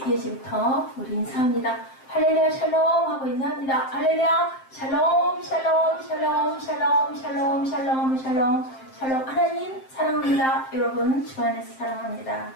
예지부터 우리 인사합니다. 할렐루야 샬롬 하고 인사합니다. 할렐루야 샬롬 샬롬 샬롬 샬롬 샬롬 샬롬 샬롬 샬롬. 하나님 사랑합니다. 여러분 주 안에서 사랑합니다.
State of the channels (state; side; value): late; right; 7.6 ms